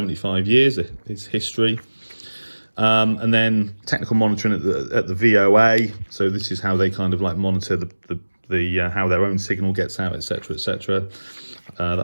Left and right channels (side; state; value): both; inverted; correlation -1.00